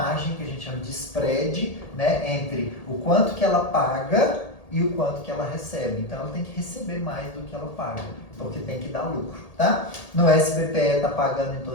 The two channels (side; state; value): right; late; 1.8 ms